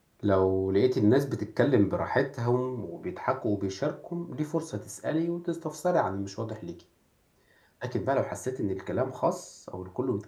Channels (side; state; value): both; identical; correlation 1.00